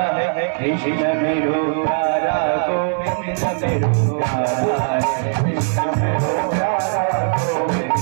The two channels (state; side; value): silent; left; digital silence